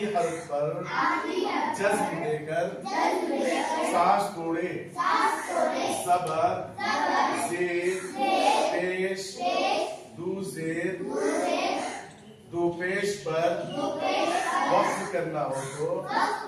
हर्फ पर जज़्म देकर सांस छोड़े। ज़बर ज़ेर पेश दू ज़ेर दो पेश पर वक्फ करना हो तो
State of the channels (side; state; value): both; identical; correlation 1.00